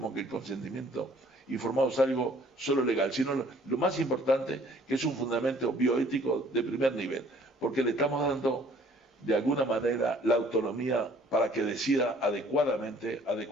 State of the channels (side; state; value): both; normal; correlation 0.57